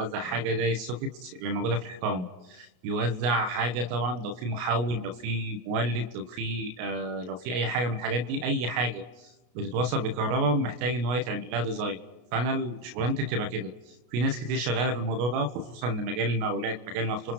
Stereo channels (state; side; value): late; left; 33 ms